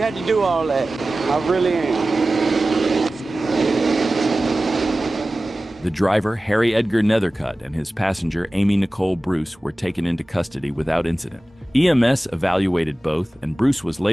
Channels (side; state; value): both; normal; correlation 0.96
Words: had to do all that. I really am. The driver, Harry Edgar Nethercutt, and his passenger, Amy Nicole Bruce, were taken into custody without incident. EMS evaluated both, and Bruce was